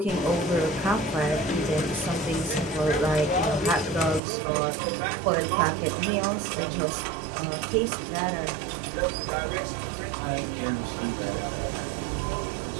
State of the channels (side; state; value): left; drops out; at 4.2 s